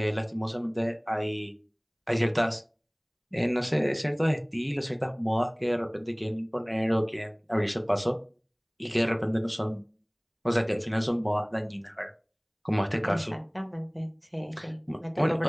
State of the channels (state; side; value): identical; both; correlation 1.00